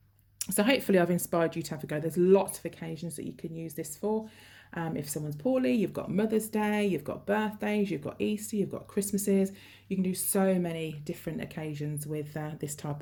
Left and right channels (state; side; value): identical; both; correlation 1.00